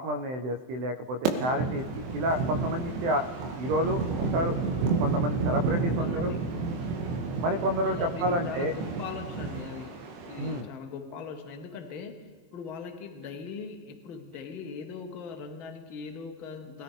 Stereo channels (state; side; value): late; left; 23 ms